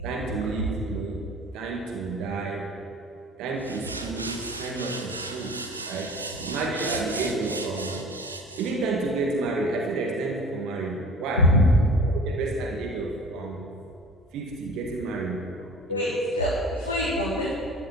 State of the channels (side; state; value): both; normal; correlation 0.42